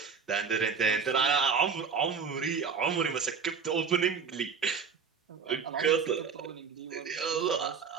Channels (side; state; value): left; quieter; 6.0 dB